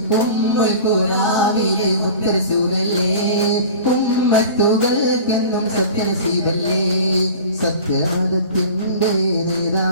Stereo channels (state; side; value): inverted; both; correlation -0.38